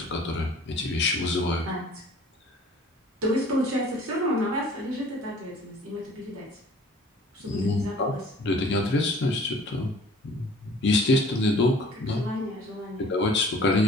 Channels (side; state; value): both; normal; correlation 0.51